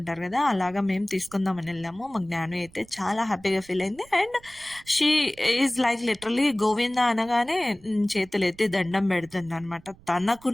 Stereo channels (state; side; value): noise; right; rumble, 25 dB below the sound